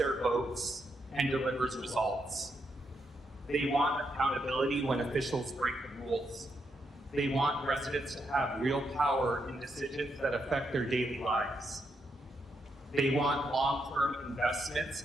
votes, and delivers results. They want accountability when officials break the rules. They want residents to have real power in decisions that affect their daily lives. They want long-term investments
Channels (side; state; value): both; normal; correlation 0.80